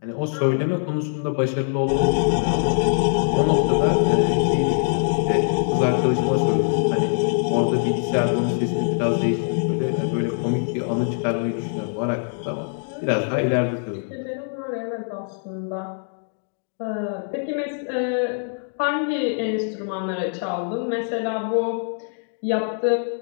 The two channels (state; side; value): silent; right; digital silence